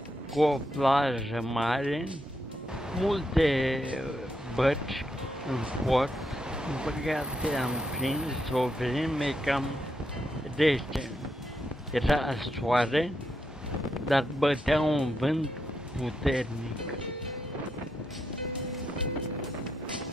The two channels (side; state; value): both; normal; correlation 0.82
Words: cu o plajă mare, multe bărci în port. În păcate am prins o vreme cam rece. Era soare, dar bătea un vânt puternic.